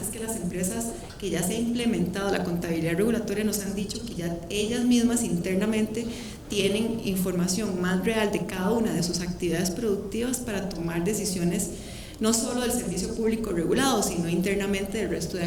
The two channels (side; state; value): both; identical; correlation 1.00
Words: es que las empresas que ya se ha implementado la contabilidad regulatoria nos han dicho que ya ellas mismas internamente tienen información más real de cada una de sus actividades productivas para tomar decisiones no solo del servicio público regulado, sino internamente del resto de